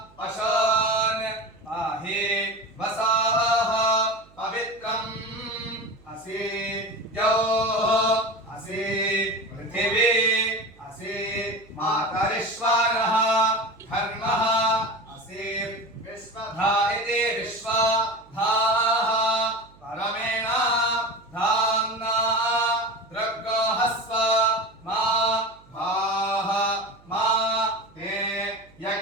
पशून् पाहि वसाः पवित्रम् असि द्यौः असि पृथिवी असि मातरिश्वरः धर्मः असि विश्वधा इति विश्वधाः परमेण धाम्ना दृग्गोहस्व मा भाः मा ते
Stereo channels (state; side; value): noise; right; hum, 27 dB below the sound